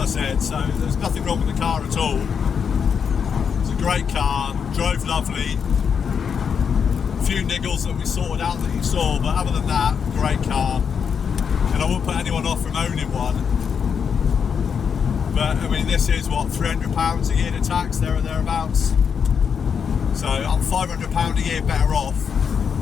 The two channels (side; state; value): right; quieter; 6.8 dB